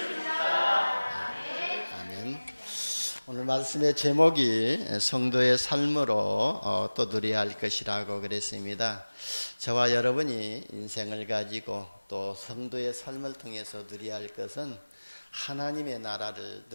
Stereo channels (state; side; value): inverted; both; correlation -1.00